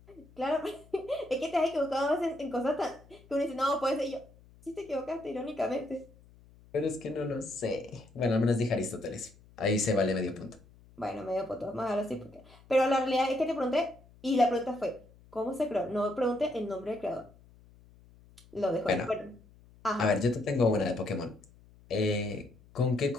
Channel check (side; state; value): left; noise; hum, 25 dB below the sound